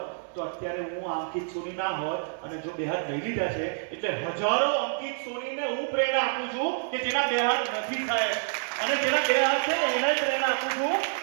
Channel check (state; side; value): silent; left; digital silence